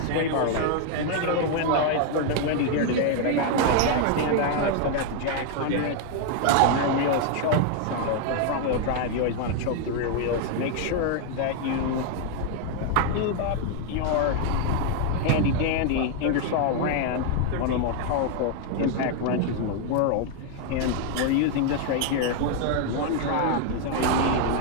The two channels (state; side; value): different; both; correlation 0.00